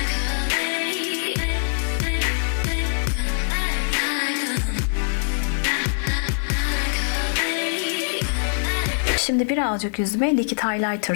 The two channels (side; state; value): right; silent; 63 dB below the other